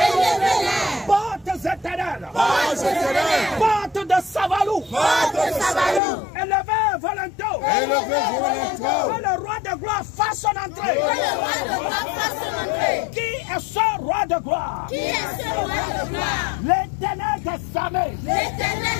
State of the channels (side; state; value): right; drops out; at 6.0 s